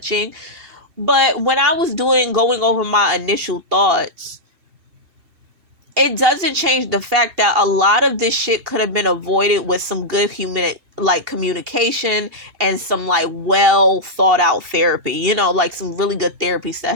But when I was going over my initial thoughts, it doesn't change the fact that a lot of this shit could have been avoided with some good human communication and some well thought out therapy, like some really good therapy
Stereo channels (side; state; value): left; late; 2.8 ms